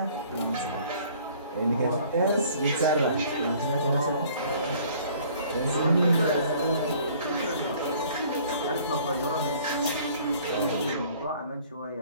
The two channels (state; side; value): inverted; both; correlation -0.55